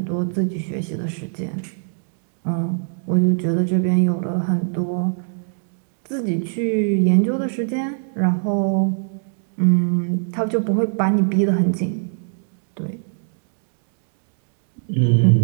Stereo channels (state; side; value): silent; left; 64 dB below the other